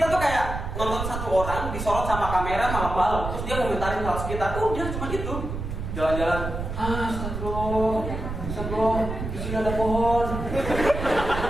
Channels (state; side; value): noise; right; rumble, 5 dB below the sound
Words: tuh kayak nonton satu orang disorot sama kamera malam-malam, terus dia komentarin hal sekitar. Udah cuma itu. Jalan-jalan, astagfirullah, di sini ada pohon.